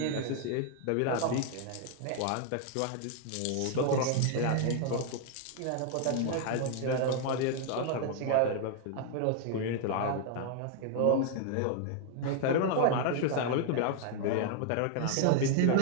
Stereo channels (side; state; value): both; different; correlation 0.00